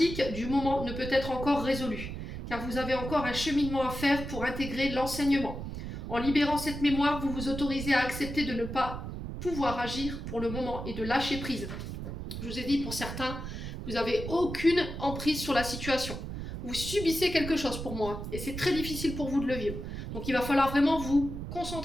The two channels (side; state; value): right; noise; rumble, 7 dB below the sound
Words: du moment ne peut être encore résolue, car vous avez encore un cheminement à faire pour intégrer l'enseignement. En libérant cette mémoire, vous vous autorisez à accepter de ne pas pouvoir agir pour le moment et de lâcher prise. Je vous ai dit, pour certains, vous n'avez aucune emprise sur la situation. Vous subissez quelque chose pour moi et c'est très difficile pour vous de le vivre. Donc il va falloir vraiment vous